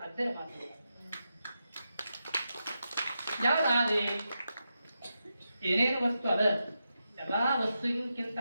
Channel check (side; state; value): both; inverted; correlation -0.88